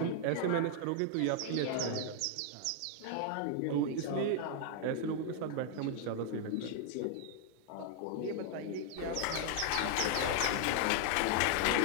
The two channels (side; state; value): both; different; correlation 0.00